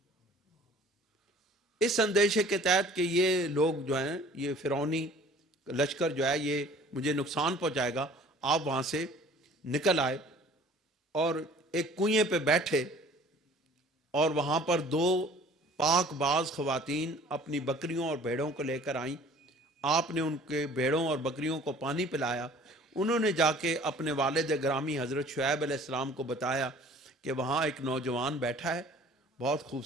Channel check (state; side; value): normal; both; correlation 0.50